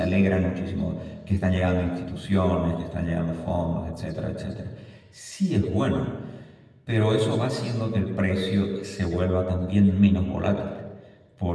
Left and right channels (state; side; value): identical; both; correlation 1.00